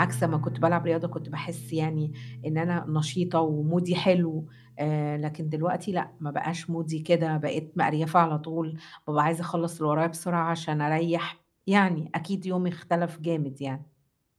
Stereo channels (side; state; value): both; identical; correlation 1.00